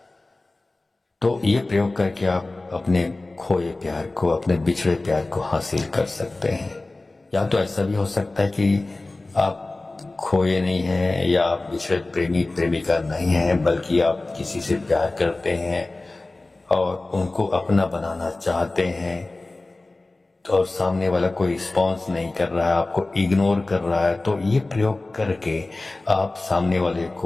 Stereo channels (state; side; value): quieter; right; 3.0 dB